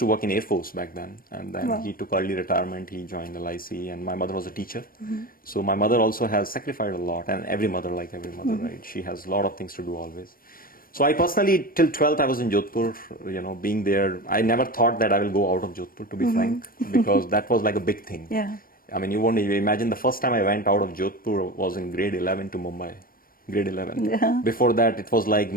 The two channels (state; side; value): late; right; 0.41 ms